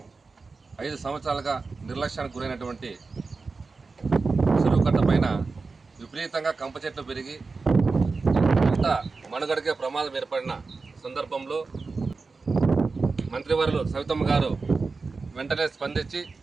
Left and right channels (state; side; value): quieter; left; 4.2 dB